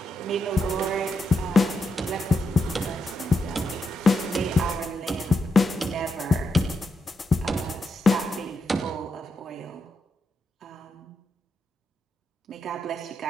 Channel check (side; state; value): both; normal; correlation 0.83